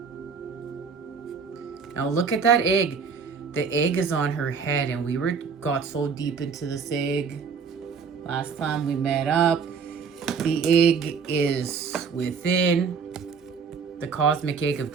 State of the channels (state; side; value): quieter; left; 5.8 dB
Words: Now look at that egg. The egg is on her head, and we got so deep into this egg last time we met up. The egg is within the cosmic egg of